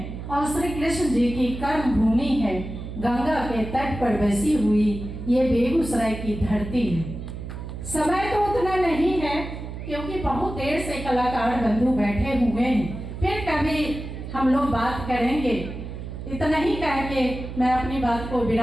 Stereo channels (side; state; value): right; noise; hum, 9 dB below the sound